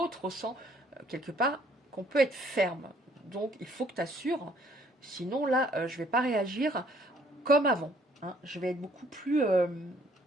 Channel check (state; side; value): normal; both; correlation 0.62